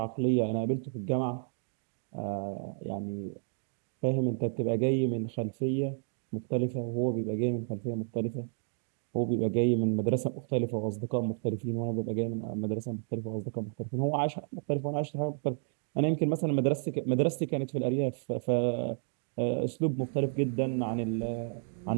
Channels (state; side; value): silent; left; 57 dB below the other